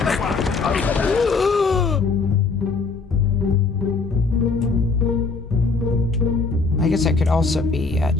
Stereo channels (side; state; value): right; quieter; 4.3 dB